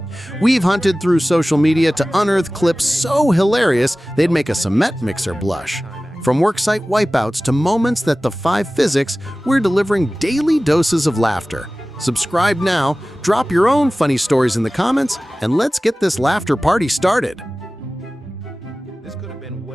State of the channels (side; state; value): both; normal; correlation 0.97